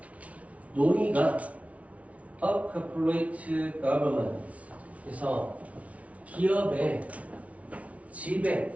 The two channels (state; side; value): late; left; 0.066 ms